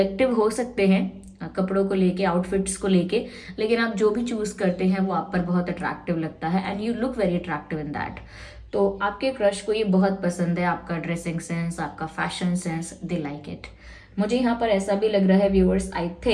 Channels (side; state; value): both; identical; correlation 1.00